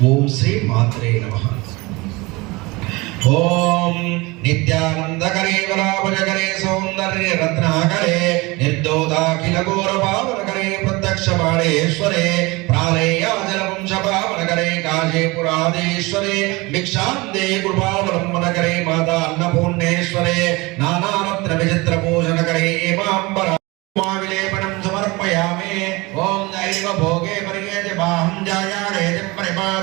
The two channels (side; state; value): left; quieter; 23.7 dB